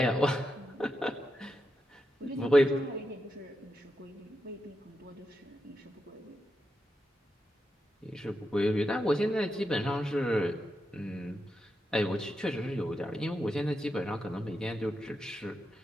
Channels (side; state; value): both; normal; correlation 0.86